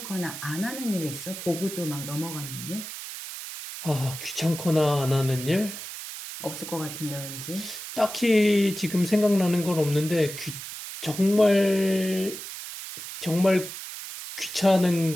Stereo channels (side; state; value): right; noise; hiss, 10 dB below the sound